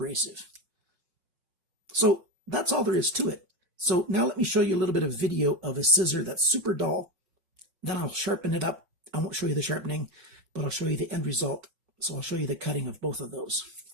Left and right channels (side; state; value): left; late; 5.3 ms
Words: So that's all there is to it. So now let me show you a little bit of video of a scissor that's super dull. Then I'll sharpen it up. I won't show you the sharpening, but I'll show you the end result. So I'll show you the cutting of both of those.